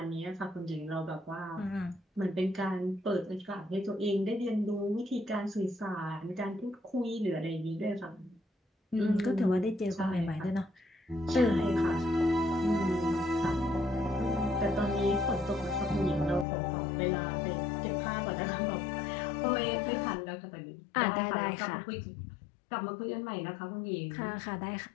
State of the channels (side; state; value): right; drops out; at 16.4 s